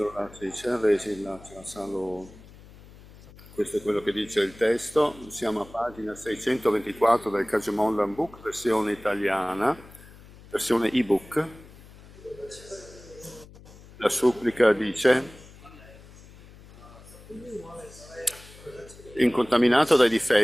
about the supplication, Questo è quello che dice il testo. Siamo a pagina 624 del Kajamondan Book, versione italiana, versione ebook. La supplica dice: incontaminato dai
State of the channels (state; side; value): noise; left; hum, 21 dB below the sound